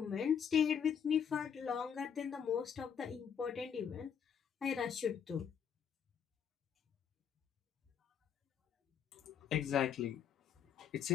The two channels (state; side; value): quieter; right; 7.8 dB